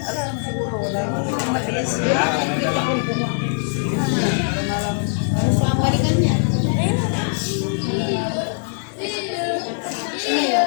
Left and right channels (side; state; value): right; silent; 60 dB below the other